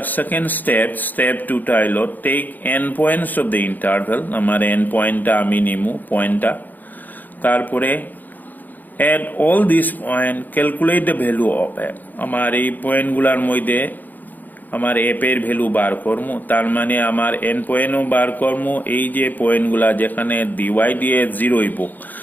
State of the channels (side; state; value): right; late; 0.085 ms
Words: সেকেন্ড স্টেপ 2টা হলো take end points of the interval, আমার এন পয়েন্টটা আমি নিমু পয়েন্টটা, তারপরে at all this point calculate the value of F, আমার এই পয়েন্টগুলোর মধ্যে আমার এফ এর ভ্যালু বার করবো, তার মানে আমার এন পয়েন্টও বার করবো। এই যে পয়েন্টগুলা যেখানে ডিওয়াই দিয়ে 0 হইব